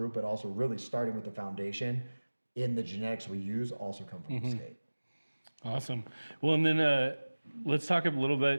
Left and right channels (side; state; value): both; inverted; correlation -1.00